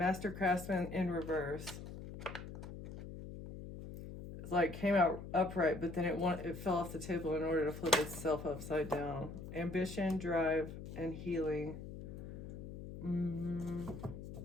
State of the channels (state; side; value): noise; left; hum, 10 dB below the sound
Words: Craftsman in reverse. It's like came out upright, but then it fell off the table in order to flip itself upside down. Ambition, drive, and healing.